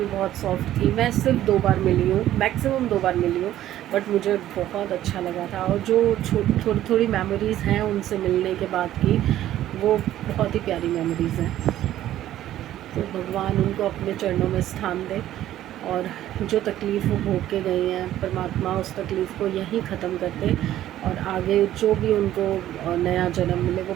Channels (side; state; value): left; quieter; 13.0 dB